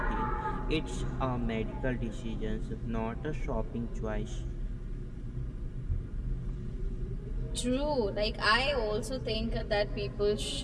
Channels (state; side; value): identical; both; correlation 1.00